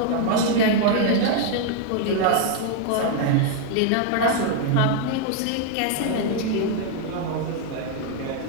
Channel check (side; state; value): both; different; correlation 0.00